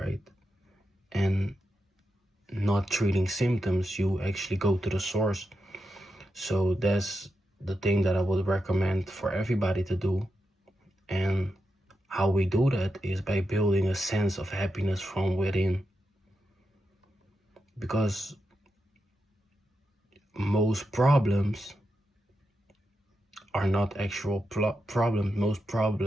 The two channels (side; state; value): both; normal; correlation 0.87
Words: And not treating symptoms, you actually go to the source. So that's the thing that I would recommend for everybody to do. And how we do that is by building a sense of happiness from within. Because most problems are not actual problems. Most